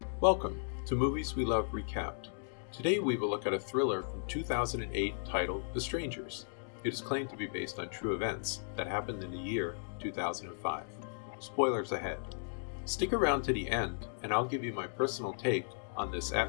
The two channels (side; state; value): right; silent; digital silence